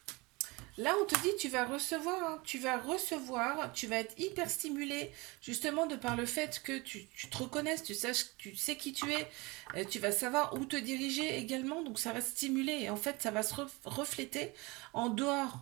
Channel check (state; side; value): quieter; left; 24.9 dB